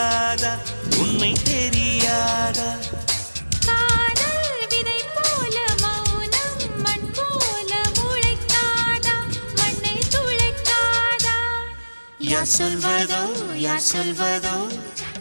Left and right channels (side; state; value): both; inverted; correlation -1.00